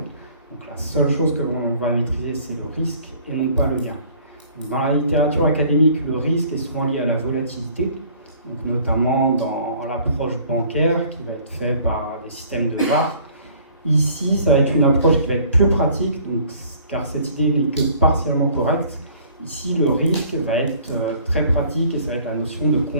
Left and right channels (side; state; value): both; inverted; correlation -0.54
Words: Donc la seule chose que l'on va maîtriser, c'est le risque et non pas le gain. Dans la littérature académique, le risque est souvent lié à la volatilité, donc notamment dans l'approche bancaire qui va être faite par des systèmes de VAR. Ici, ça va être une approche qui va être plus pratique, donc, car cette idée n'est que partiellement correcte. Ici, le risque va être très pratique et ça va être la notion de